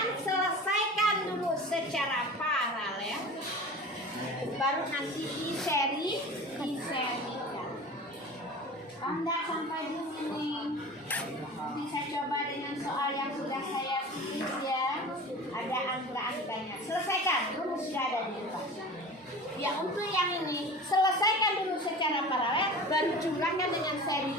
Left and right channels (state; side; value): normal; both; correlation 0.36